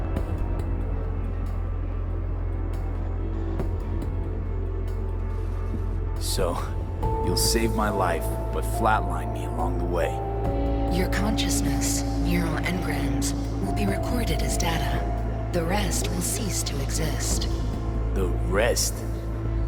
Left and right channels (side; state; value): both; identical; correlation 1.00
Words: So, you'll save my life, but flatline me along the way. Your consciousness, neural engrams, will be recorded as data. The rest will cease to exist. The rest?